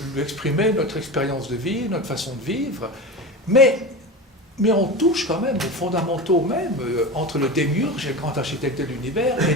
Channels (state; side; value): normal; both; correlation 0.27